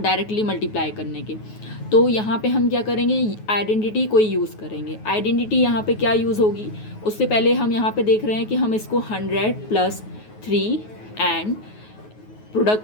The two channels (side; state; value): right; late; 9.4 ms